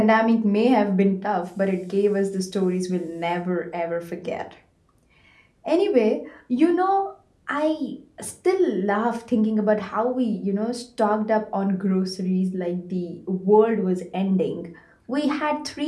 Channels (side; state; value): both; identical; correlation 1.00